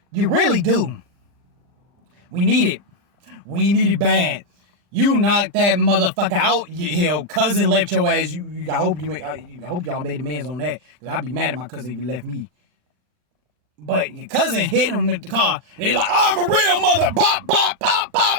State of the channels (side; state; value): left; late; 40 ms